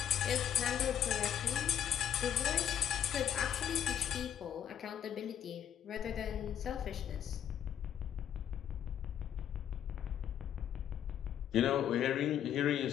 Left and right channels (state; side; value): quieter; right; 9.6 dB